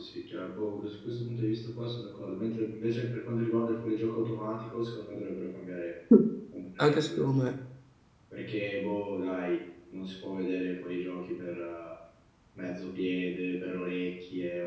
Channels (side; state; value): both; identical; correlation 1.00